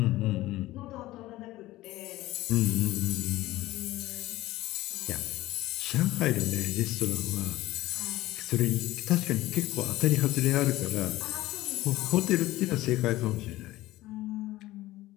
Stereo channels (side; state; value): right; quieter; 17.1 dB